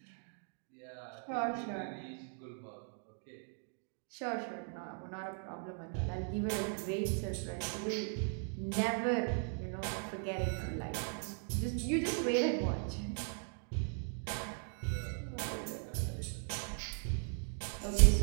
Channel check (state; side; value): silent; left; 52 dB below the other